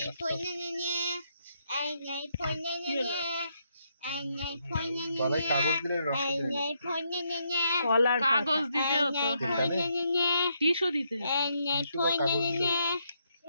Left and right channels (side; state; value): both; inverted; correlation -0.77